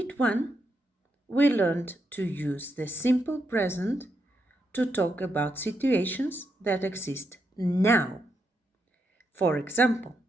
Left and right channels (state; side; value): normal; both; correlation 0.81